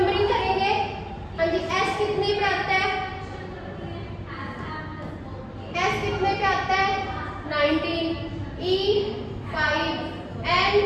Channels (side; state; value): both; identical; correlation 1.00